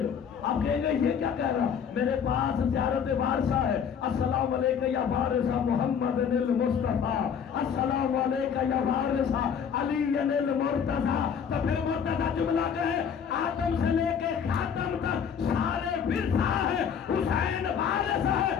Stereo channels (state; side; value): quieter; right; 7.4 dB